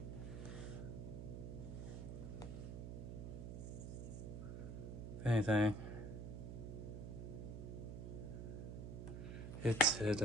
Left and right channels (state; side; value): noise; right; hum, 6 dB below the sound